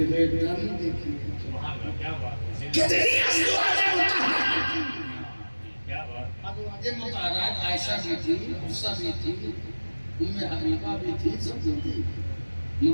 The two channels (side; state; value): both; inverted; correlation -1.00